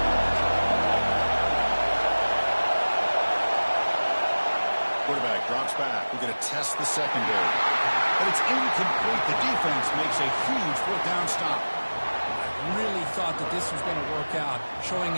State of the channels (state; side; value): inverted; both; correlation -1.00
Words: Quarterback drops back. We're going to test the secondary. But it's incomplete. The defense makes a huge 4th down stop. I really thought that this was going to work out, showing